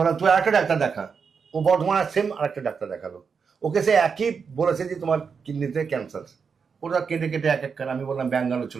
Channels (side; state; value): left; quieter; 5.9 dB